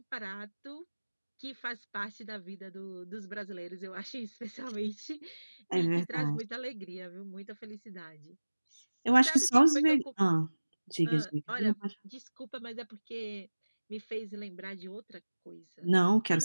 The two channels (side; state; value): both; inverted; correlation -1.00